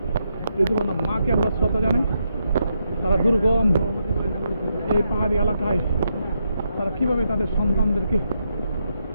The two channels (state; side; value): inverted; both; correlation -0.81